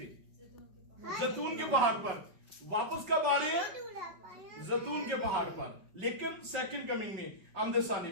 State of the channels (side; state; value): left; late; 5.3 ms